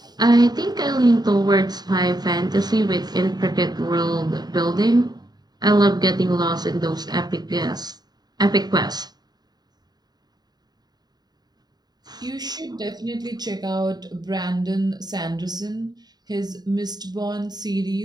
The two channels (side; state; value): left; late; 0.20 ms